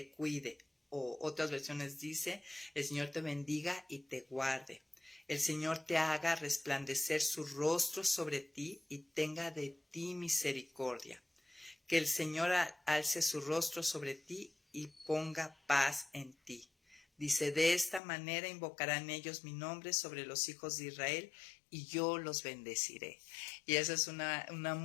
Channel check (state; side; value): drops out; right; at 18.0 s